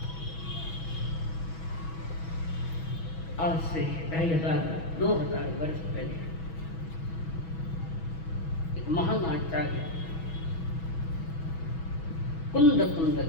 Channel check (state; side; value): late; right; 6.2 ms